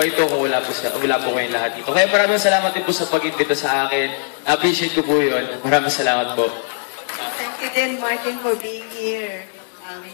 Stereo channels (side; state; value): right; silent; digital silence